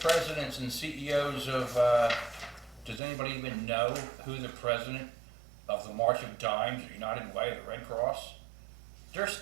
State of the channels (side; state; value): left; drops out; at 3.0 s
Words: and CEOs of, does anybody even know who the president of the March of Dimes, the United Way, the Red Cross? They're